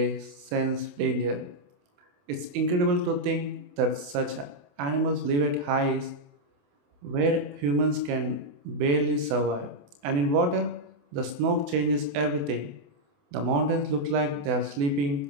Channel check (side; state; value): left; late; 28 ms